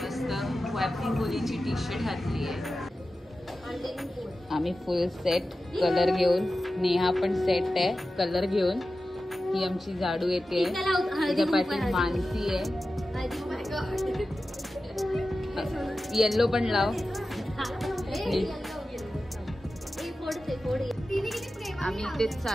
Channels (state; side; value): normal; both; correlation 0.94